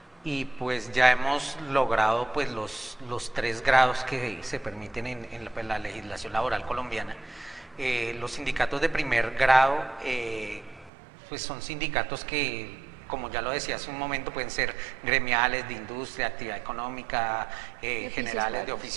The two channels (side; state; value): left; drops out; at 10.9 s